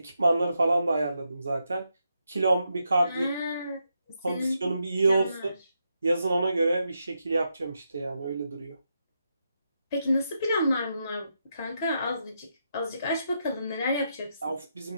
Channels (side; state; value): both; inverted; correlation -0.83